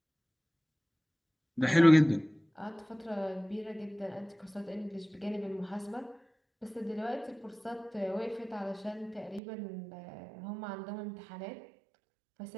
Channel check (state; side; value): drops out; left; at 9.4 s